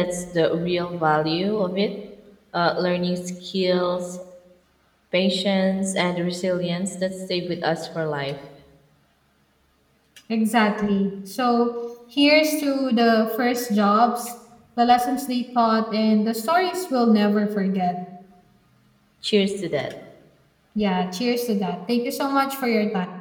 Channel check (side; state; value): both; identical; correlation 1.00